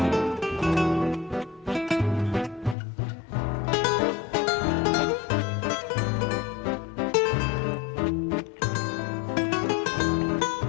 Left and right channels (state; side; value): drops out; right; at 2.8 s